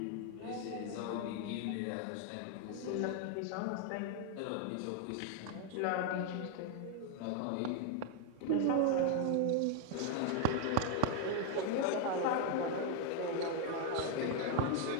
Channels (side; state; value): both; different; correlation 0.00